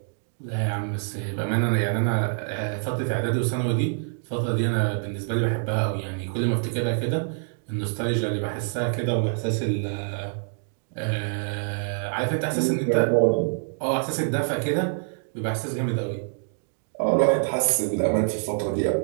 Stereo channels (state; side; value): silent; left; digital silence